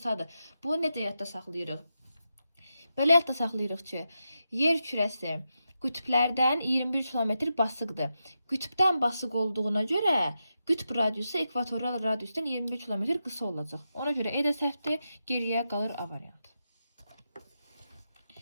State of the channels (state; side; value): inverted; both; correlation -0.87